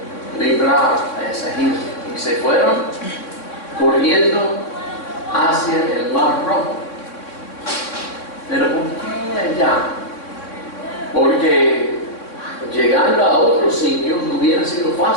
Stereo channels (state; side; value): late; right; 3.6 ms